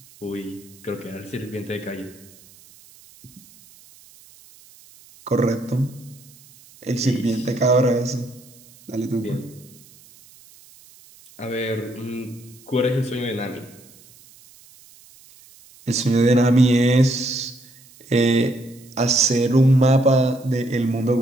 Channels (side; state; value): right; noise; hiss, 25 dB below the sound